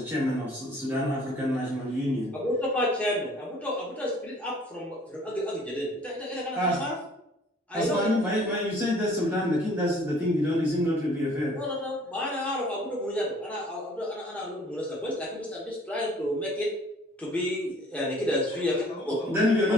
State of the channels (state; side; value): normal; both; correlation 0.54